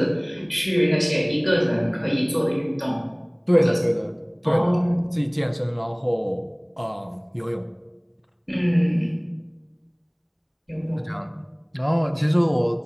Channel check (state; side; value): identical; both; correlation 1.00